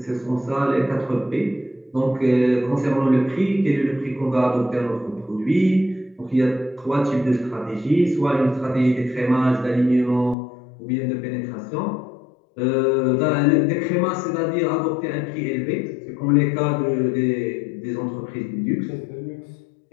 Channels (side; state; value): right; drops out; at 10.4 s